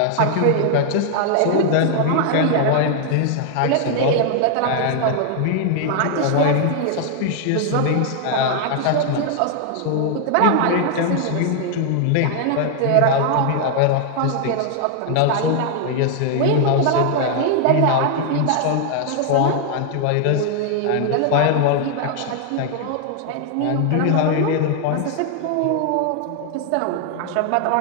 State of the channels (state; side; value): different; both; correlation 0.00